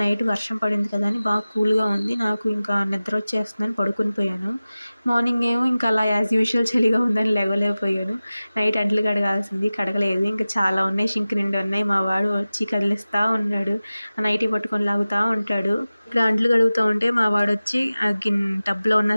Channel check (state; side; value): inverted; both; correlation -0.97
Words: నైట్ వర్షం పడింది కదా అని బాగా కూల్గా ఉంది. నాకు ఇంకా నిద్ర వచ్చేస్తుందని పడుకొని పోయాను. మార్నింగ్ ఏమో ఇంకా అలా యాజ్ యూజువల్ చలిగా ఉందని లేవలేకపోయాను. నైట్ అంట్లు కడగాల్సింది కడగలేదు. ఇంకా చాలా ఉన్నాయి, షింక్ నిండి ఉన్నాయి. మా వాడు వచ్చి కదిలిస్తూ ఉన్నాడు, ఆ నైటీ పట్టుకొని లాగుతూ ఉంటాడు. ఇక్కడ అంట్లు కడుగుతూ ఉంటే మా వాడు వచ్చి ఆ టబ్లో ఉన్న